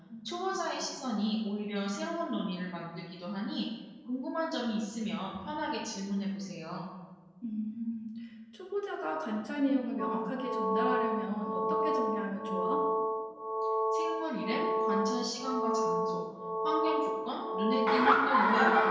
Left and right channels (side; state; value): both; identical; correlation 1.00